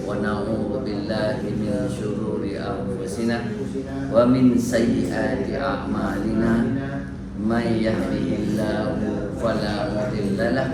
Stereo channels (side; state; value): both; identical; correlation 1.00